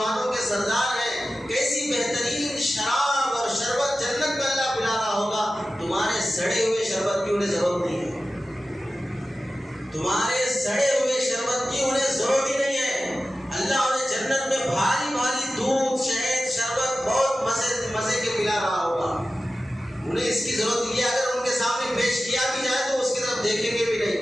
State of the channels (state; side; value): normal; both; correlation 0.94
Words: کے سردار ہیں، کیسی بہترین شراب اور شربت جنت میں اللہ پلا رہا ہوگا، تمہارے سڑے ہوئے شربت کی انہیں ضرورت نہیں ہے، تمہارے سڑے ہوئے شربت کی انہیں ضرورت ہی نہیں ہے، اللہ انہیں جنت میں بھاری بھاری دودھ شہد شربت بہت مزے کے پلا رہا ہوگا، انہیں اس کی ضرورت یہ اگر ان کے سامنے پیش کیا بھی جائے تو اس کی طرف دیکھیں گے بھی